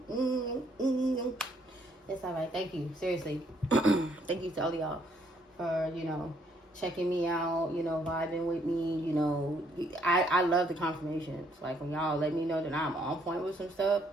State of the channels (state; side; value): normal; both; correlation 0.68